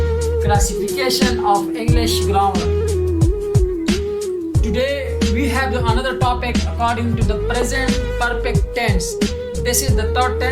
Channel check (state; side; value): identical; both; correlation 1.00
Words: Classification of English Grammar. Today we have another topic according to the present perfect tense. This is the third